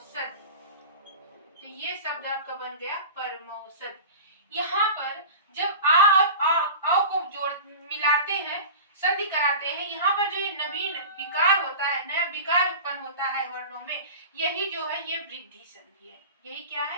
तो ये शब्द आपका बन गया परमौषधि। यहाँ पर जब आ और आ को जोड़ मिलाते हैं, संधि कराते हैं, यहाँ पर जो ये नवीन विकार होता है, नया विकार उत्पन्न होता है वर्णों में, यही जो है ये वृद्धि संधि है। यही क्या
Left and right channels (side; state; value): both; inverted; correlation -0.34